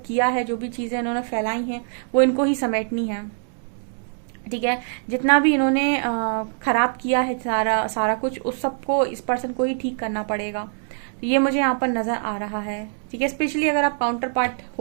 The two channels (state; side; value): silent; left; 63 dB below the other